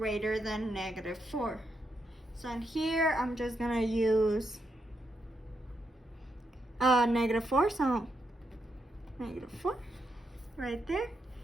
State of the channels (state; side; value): normal; both; correlation 0.82